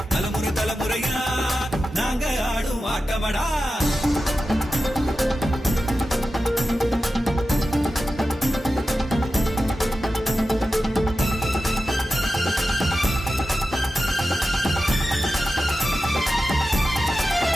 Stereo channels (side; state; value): both; normal; correlation 0.93